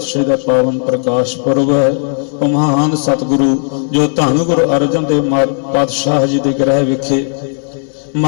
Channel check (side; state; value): right; silent; digital silence